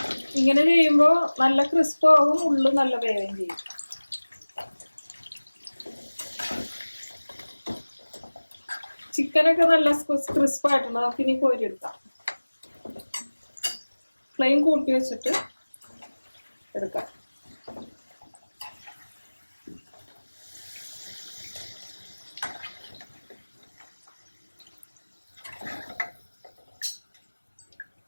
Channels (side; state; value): both; inverted; correlation -1.00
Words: ഇങ്ങനെ ചെയ്യുമ്പോൾ നല്ല ക്രിസ്പ് ആവും, ഉള്ളു നല്ല വേവുകയും ചെയ്യും. ചിക്കനൊക്കെ നല്ല ക്രിസ്പ് ആയിട്ടുണ്ട്. നമുക്ക് ഇനി കോരിയെടുക്കാം. ഫ്ലെയിം കൂട്ടി വെച്ചിട്ട് എടുക്കാം.